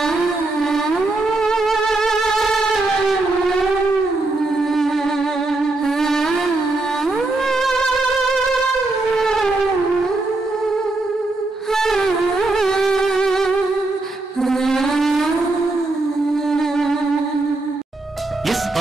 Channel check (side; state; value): left; quieter; 3.0 dB